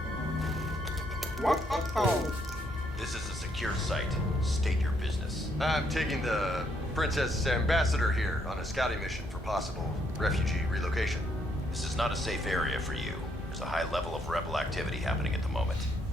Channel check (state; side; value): normal; both; correlation 0.73